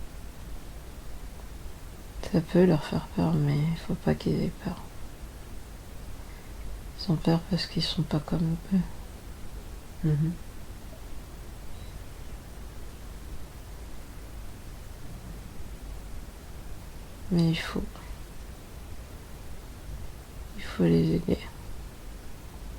Ça peut leur faire peur, mais il faut pas qu'ils aient peur. Ils ont peur parce qu'ils sont pas comme eux. Mhm. Mais il faut les aider.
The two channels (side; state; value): both; identical; correlation 1.00